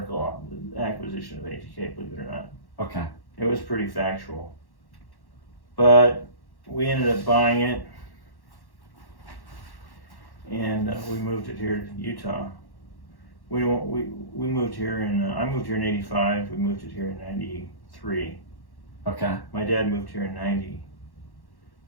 on the acquisition of ATK, believe it or not. Okay. It was pretty factual. But we ended up buying it, and we moved it here to Utah. We moved here I moved here in '85. We moved it here in '93. Okay. My dad moved here in '90.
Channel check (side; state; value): right; late; 1.1 ms